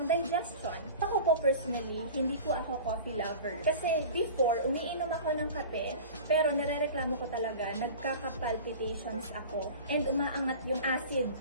digestion. Ako po personally, hindi po ako coffee lover. Kasi before, umiinom ako ng kape, pero narereklamo ko talaga, nagkaka-palpitations ako, and umaangat yung acid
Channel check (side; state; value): both; inverted; correlation -0.37